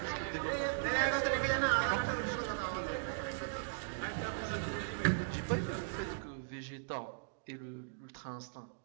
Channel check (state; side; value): silent; left; digital silence